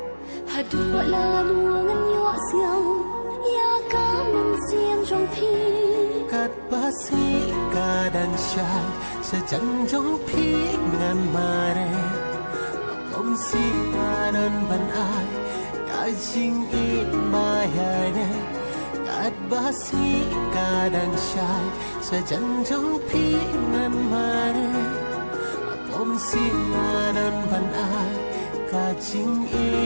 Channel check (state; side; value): inverted; both; correlation -1.00